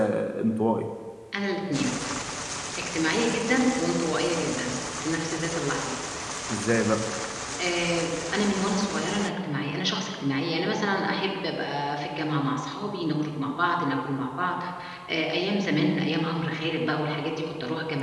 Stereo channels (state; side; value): identical; both; correlation 1.00